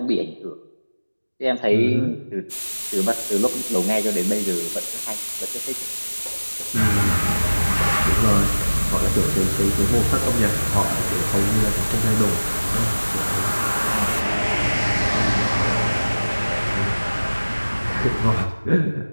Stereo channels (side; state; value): both; inverted; correlation -1.00